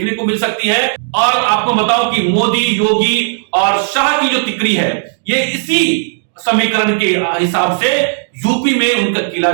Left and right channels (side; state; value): left; silent; digital silence